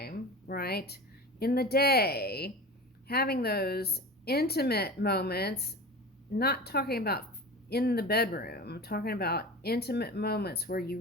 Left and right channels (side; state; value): both; normal; correlation 0.32